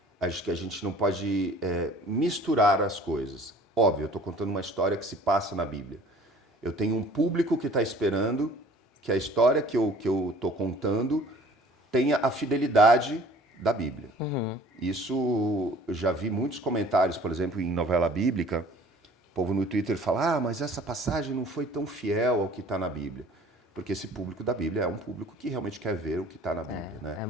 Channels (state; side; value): normal; both; correlation 0.50